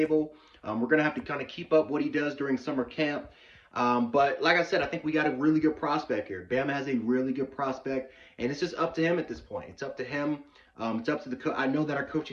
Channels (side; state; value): both; identical; correlation 1.00